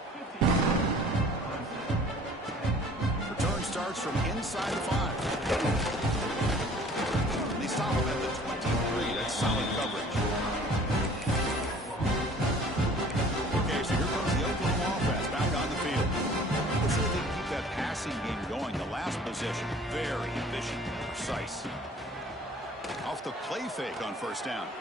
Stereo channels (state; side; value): normal; both; correlation 0.51